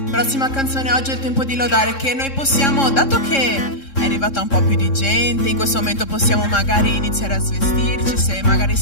Prossima canzone, oggi è il tempo di lodare, che noi possiamo, dato che è arrivata un po' più di gente, in questo momento possiamo magari iniziare a svestirci, se magari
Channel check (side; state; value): right; late; 3.7 ms